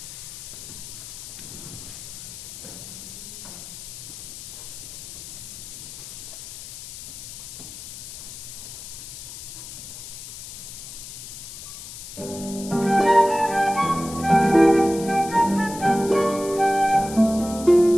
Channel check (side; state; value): left; noise; hiss, 11 dB below the sound